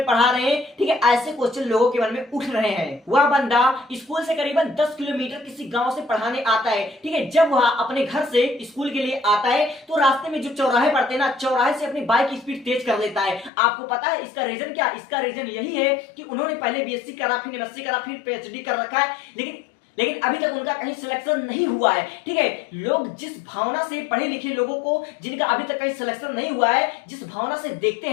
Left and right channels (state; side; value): drops out; right; at 13.5 s